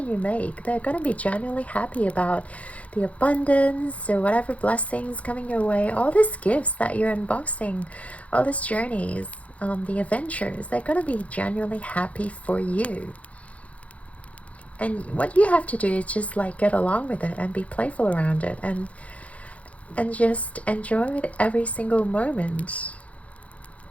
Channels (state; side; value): late; right; 0.065 ms